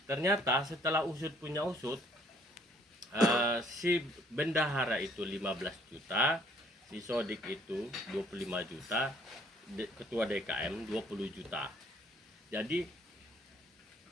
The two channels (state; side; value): normal; both; correlation 0.61